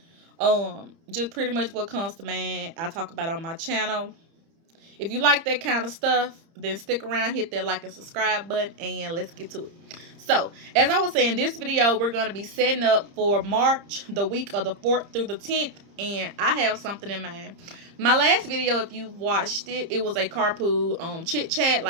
Just pretty much what comes to mind, I talk about on my channel. If you like that kind of stuff, then stick around, hit that like and subscribe button, and let's get to it. So, as I was saying, this video, we're going to be setting up for March, the week of the 4th through the 10th, and I have something in mind. My last video, if you watched it, it was a carpool chit chat,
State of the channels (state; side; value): late; left; 30 ms